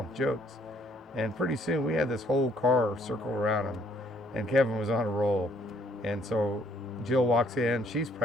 jokes. And pretty soon we had this whole car circle around him, and Kevin was on a roll. And so Jill walks in, she's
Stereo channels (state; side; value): normal; both; correlation 0.64